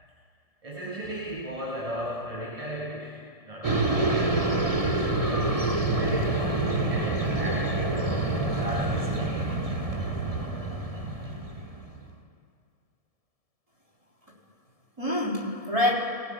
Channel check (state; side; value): late; left; 1.7 ms